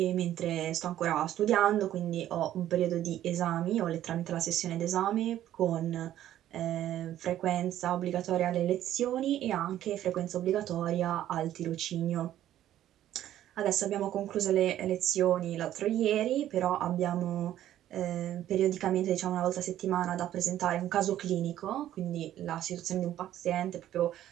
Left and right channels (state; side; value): quieter; left; 12.3 dB